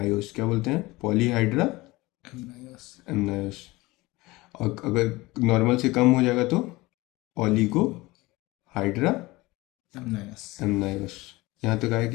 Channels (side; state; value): right; quieter; 21.0 dB